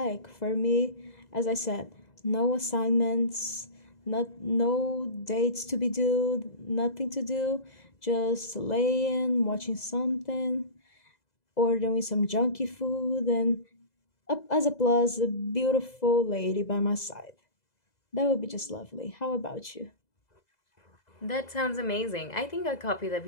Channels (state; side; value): late; right; 2.0 ms